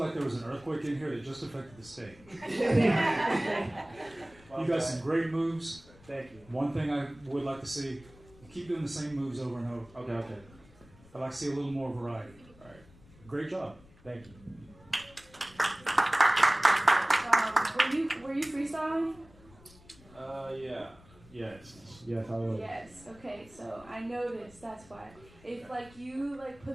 earthquake in here that just affected the stage. You got some great moves. Thank you. One thing I would like to see, you keep doing the same moves over and over. Okay. I'd like to see a little more variety. All right. Great job. Thank you. Were you freestyling? Yeah. Yes, I was. Yes. Okay. So I noticed. That's why. If like you like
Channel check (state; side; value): noise; left; rumble, 24 dB below the sound